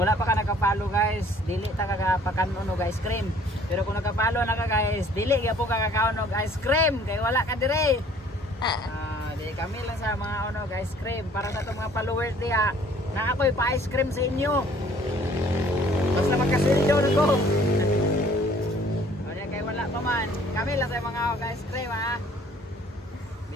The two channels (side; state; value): both; normal; correlation 0.56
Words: pa ka nakapalo guys, dili ta kakapanon og ice cream. Pero kung nakapalo na ka guys, dili gyapon ka kakaon og ice cream kay wala ka dire. Di kami lang sa mga onog ice cream para sa itong mga followers diha na ako'y pa-ice cream sa inyo. Basta magkasilyo na ko. Kaya kay wala pa man, kami lang sa mga ice cream ha.